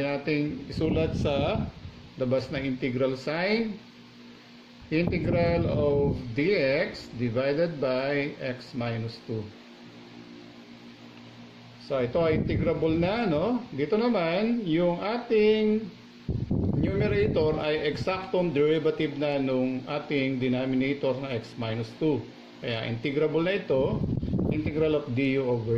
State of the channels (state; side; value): identical; both; correlation 1.00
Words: nating isulat sa labas ng integral sign. Integral of dx divided by x minus 2. So, ito ay integrable na. Dito naman, yung ating numerator ay exactong derivative na nung ating denominator na x minus 2. Kaya integrable na ito, integral of du